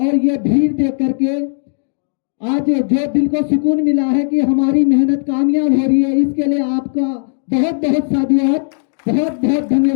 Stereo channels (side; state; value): right; silent; digital silence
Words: ये भीड़ देख करके आज जो दिल को सुकून मिला है कि हमारी मेहनत कामयाब हो रही है, इसके लिए आपका बहुत बहुत साधुवाद, बहुत बहुत